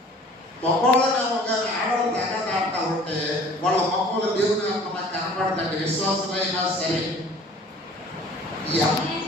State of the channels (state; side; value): normal; both; correlation 0.49